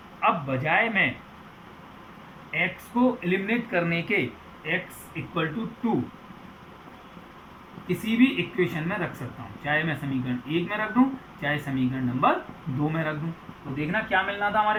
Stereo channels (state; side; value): identical; both; correlation 1.00